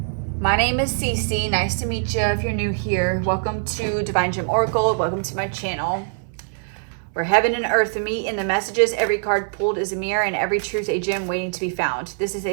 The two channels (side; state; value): left; silent; 64 dB below the other